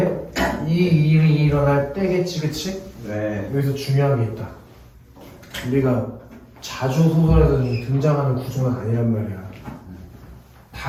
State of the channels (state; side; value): identical; both; correlation 1.00